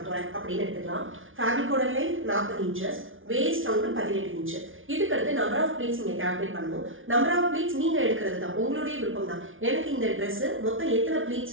போறேன் அப்படின்னு எடுத்துக்கலாம். fabricோட length 40 inches, waist round 18 inch. இதுக்கு அடுத்து நம்பர் ஆஃப் ப்ளீட்ஸ் நீங்க கால்குலேட் பண்ணணும். நம்பர் ஆஃப் ப்ளீட்ஸ் நீங்க எடுக்கிறது தான், உங்களுடைய விருப்பம் தான். எனக்கு இந்த Dress மொத்தம் எத்தனை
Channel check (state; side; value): late; left; 0.58 ms